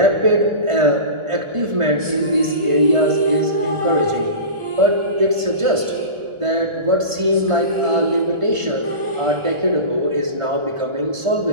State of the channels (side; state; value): left; late; 1.5 ms